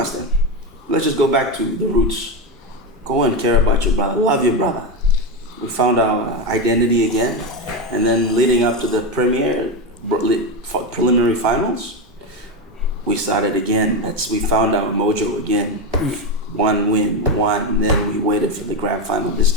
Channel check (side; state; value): both; normal; correlation 0.13